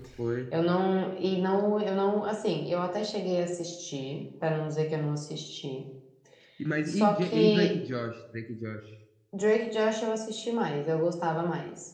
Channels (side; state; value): both; identical; correlation 1.00